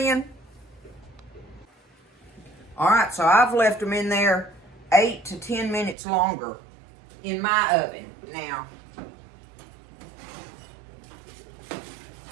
All right, so I've left them in there 8 to 10 minutes longer in my oven. Now,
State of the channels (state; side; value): drops out; left; at 6.0 s